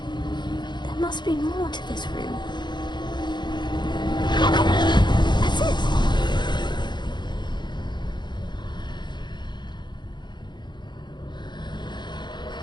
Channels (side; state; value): right; late; 0.21 ms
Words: There must be more to this room. That's it!